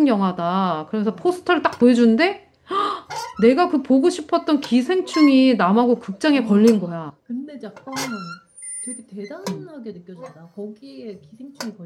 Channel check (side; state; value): both; identical; correlation 1.00